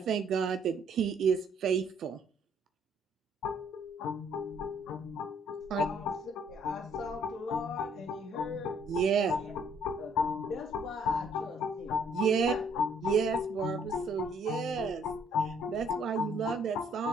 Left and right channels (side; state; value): both; normal; correlation 0.64